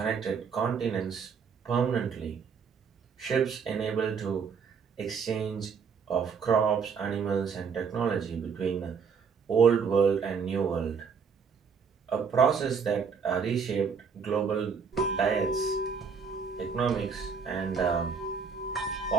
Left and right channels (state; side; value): quieter; left; 6.0 dB